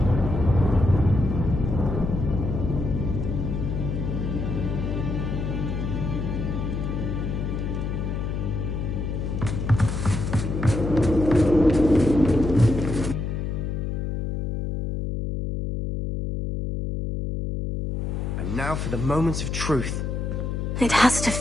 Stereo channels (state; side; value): noise; left; hum, 2 dB below the sound